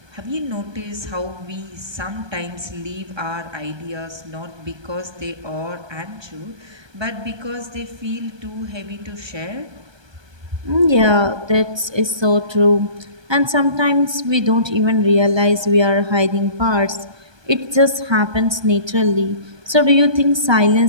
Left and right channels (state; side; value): late; left; 1.2 ms